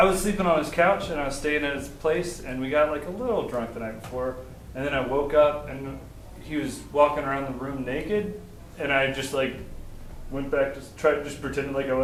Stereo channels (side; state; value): both; identical; correlation 1.00